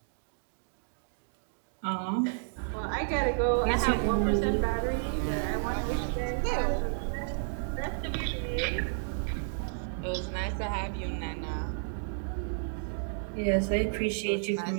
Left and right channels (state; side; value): silent; left; digital silence